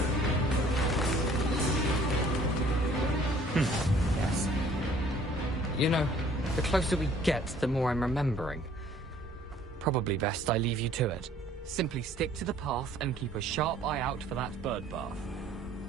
Yes. You know, the closer we get, the more I'm remembering. Probably best I leave you to it. Simply stick to the path and keep a sharp eye out for that bird bath.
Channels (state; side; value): normal; both; correlation 0.56